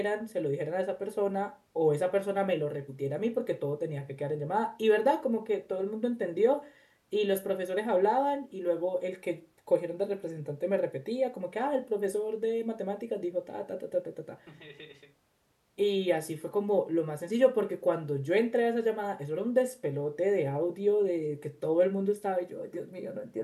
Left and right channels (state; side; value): identical; both; correlation 1.00